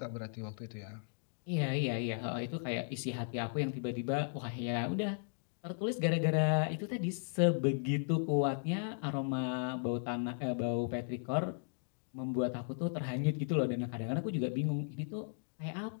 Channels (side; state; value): right; silent; digital silence